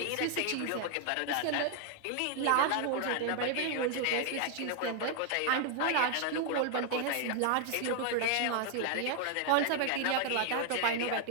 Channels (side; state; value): both; different; correlation 0.00